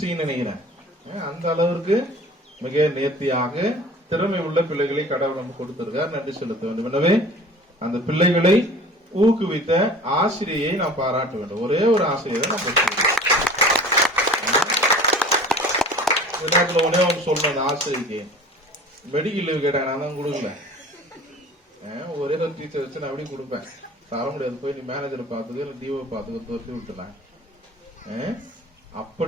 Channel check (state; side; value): normal; both; correlation 0.43